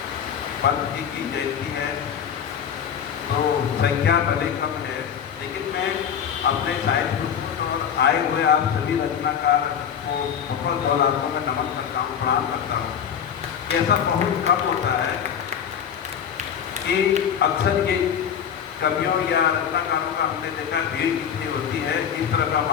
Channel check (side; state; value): right; quieter; 8.2 dB